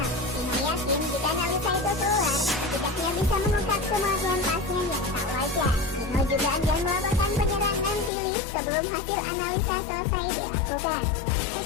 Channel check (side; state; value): right; drops out; at 8.1 s